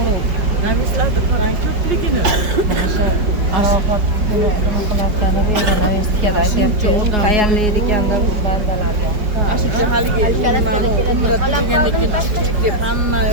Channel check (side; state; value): left; late; 5.1 ms